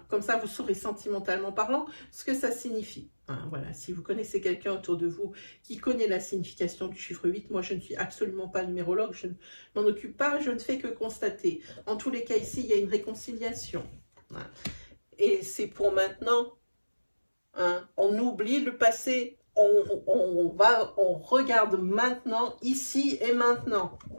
Comme ça, vous saurez sentimentalement parlant ce que ça signifie. Hein, voilà. Si vous connaissez quelqu'un autour de vous qui connaît la signification du chiffre 8, moi, je ne suis absolument pas numérologue, je ne m'en occupe pas, je ne fais que constater. En tous les cas, ici, il y a une réconciliation. Hein. Et c'est pour maintenant. Hein. On oublie le passé. On regarde maintenant, ici et maintenant.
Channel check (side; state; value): both; inverted; correlation -1.00